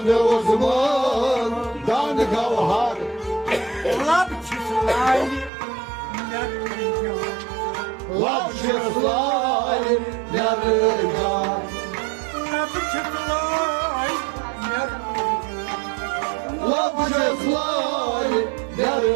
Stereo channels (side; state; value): left; drops out; at 5.5 s